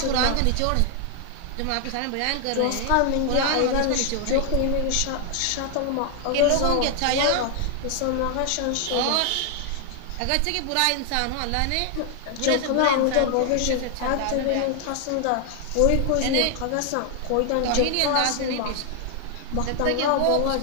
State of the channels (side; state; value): both; different; correlation 0.00